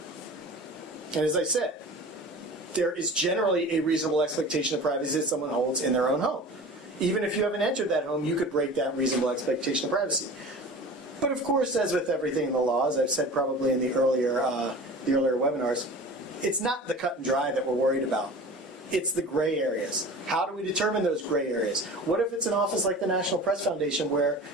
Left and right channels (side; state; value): both; normal; correlation 0.38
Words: And as I said, there is generally a reasonable expectation of privacy that someone holds in their own home. Even if you haven't entered that home, you could break that reasonable expectation of privacy. But of course, as with everything in the law, as I've said probably in the earlier webinars, it's not the cut and dry that we're worried about. It's the gray areas. How do we determine those gray areas? What if it's an office like the National Press Foundation where,